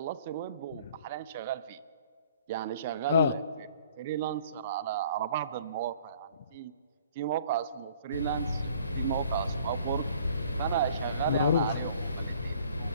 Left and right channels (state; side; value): inverted; both; correlation -0.55